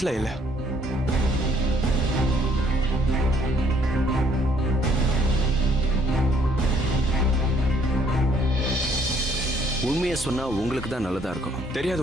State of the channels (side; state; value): both; normal; correlation 0.64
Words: இல்லை. உண்மையை சொன்னா உங்களுக்கு தான் நல்லதா இருக்கும்.